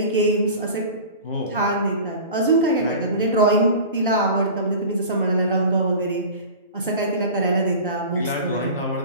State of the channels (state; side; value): inverted; both; correlation -0.37